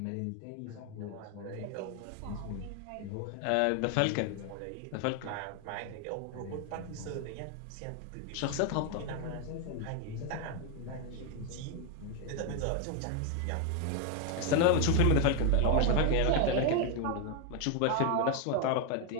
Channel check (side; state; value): both; different; correlation 0.01